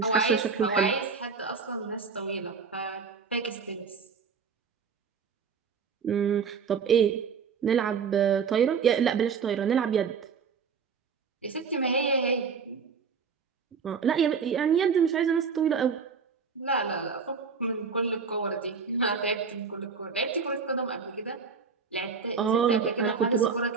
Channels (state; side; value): quieter; left; 5.7 dB